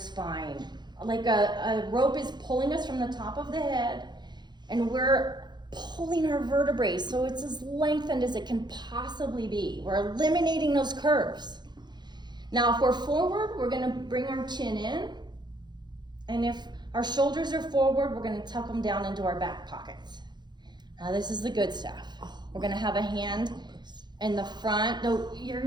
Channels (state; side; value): late; left; 0.21 ms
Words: Like a rope is pulling us from the top of the head, and we're pulling our vertebrae so it's as lengthened as it can possibly be. We're eliminating those curves. Now, if we're forward, we're gonna bring our chin in. And if our shoulders are forward, we're gonna tuck them down into our back pockets. Now, this is the good stuff. We're gonna have a hand in the front. No, you're